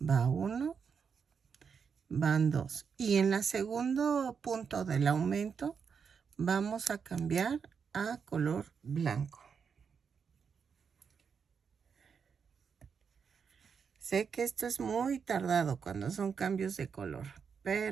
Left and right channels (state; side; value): quieter; left; 6.3 dB